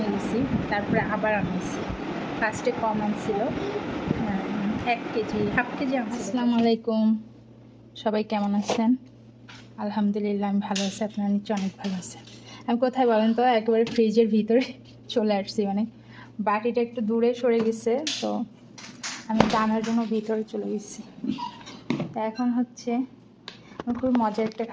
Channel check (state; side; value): identical; both; correlation 1.00